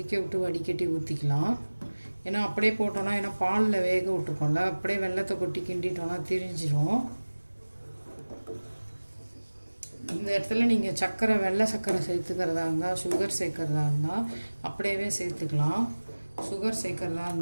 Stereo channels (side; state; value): both; inverted; correlation -1.00